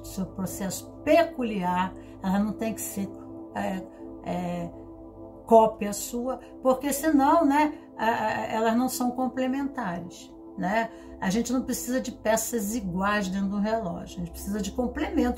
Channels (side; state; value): both; identical; correlation 1.00